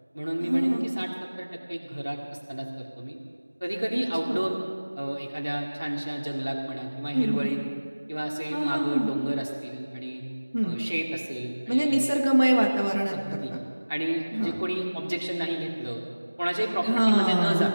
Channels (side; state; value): both; inverted; correlation -1.00